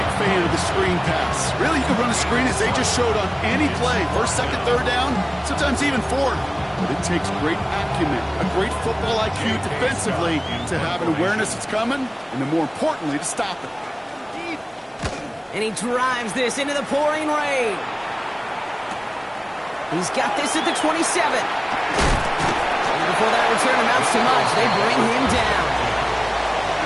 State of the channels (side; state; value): both; identical; correlation 1.00